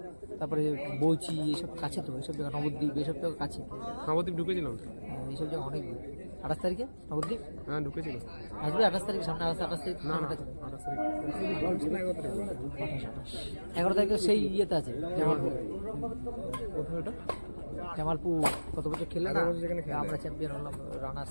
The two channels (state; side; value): inverted; both; correlation -1.00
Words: তারপরে বৌচি এসব কাছে তো, এইসব জায়গা নবদ্বীপ এসব জায়গা কাছে। নবদ্বীপ ঢুকেছিলাম, এইসব জায়গা অনেক দূর। 28 তারিখে নবদ্বীপ? হ্যাঁ ঢুকেছিল। আসবে 28 তারিখ সামনে? 28 তারিখ না 11 তারিখে সেই ইয়েতে আছে জামালপুর। জামালপুর কত বছর খেলে না আমরা চ্যাম্পিয়ন হলাম। রানার্স